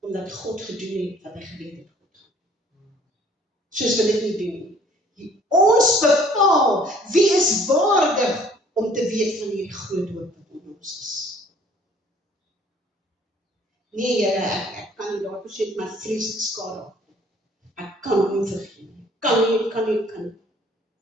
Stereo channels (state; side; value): normal; both; correlation 0.57